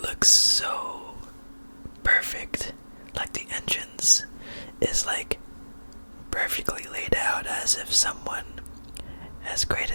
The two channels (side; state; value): both; inverted; correlation -1.00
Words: looks so perfect. Like the entrance is like perfectly laid out as if someone has